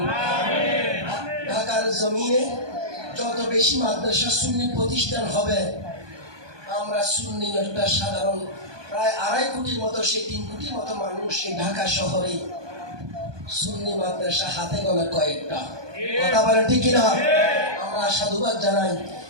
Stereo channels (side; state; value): left; late; 1.2 ms